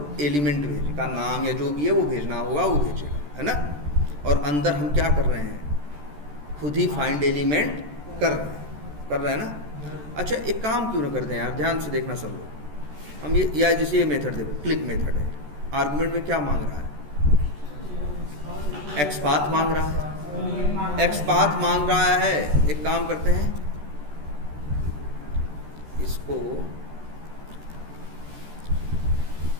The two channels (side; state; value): left; late; 14 ms